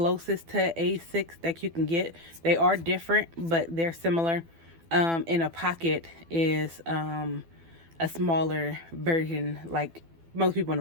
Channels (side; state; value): left; late; 12 ms